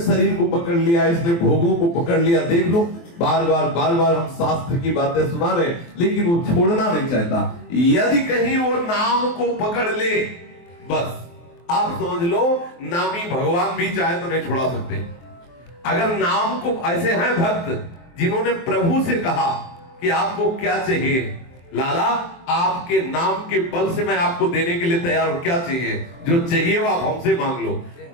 को पकड़ लिया, इसने भोगों को पकड़ लिया। देख लो, बार बार हम शास्त्र की बातें सुना रहे, लेकिन वो छोड़ना नहीं चाहता। यदि कहीं वो नाम को पकड़ ले, बस आप समझ लो नामी भगवान भी चाहे तो नहीं छुड़ा सकते। अगर नाम को, ऐसे हैं भक्त जिन्होंने प्रभु से कहा कि आपको क्या चाहिए, लाला आपके नाम के बल से मैं आपको देने के लिए तैयार हूं, क्या चाहिए, जो चाहिए वो आप हमसे मांग लो।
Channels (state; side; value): late; right; 23 ms